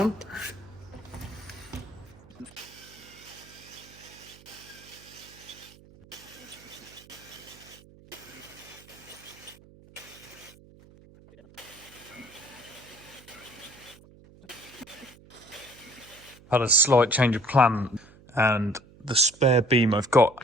Had a slight change of plan, and the spare beam I've got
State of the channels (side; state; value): right; noise; hum, 23 dB below the sound